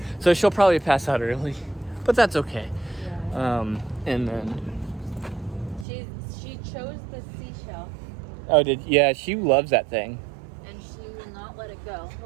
So she'll probably pass out early, but that's okay. Yeah. And then. She chose the seashell Oh, she loves that thing. and she will not let it go.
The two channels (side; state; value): left; drops out; at 5.9 s